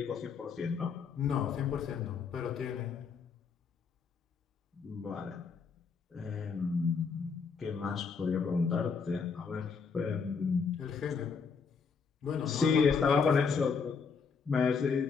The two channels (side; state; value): right; quieter; 5.6 dB